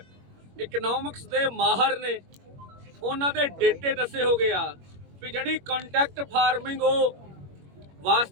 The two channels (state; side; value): late; left; 21 ms